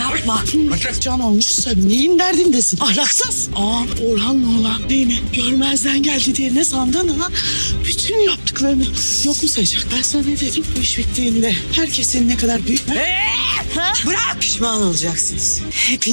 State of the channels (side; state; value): both; inverted; correlation -1.00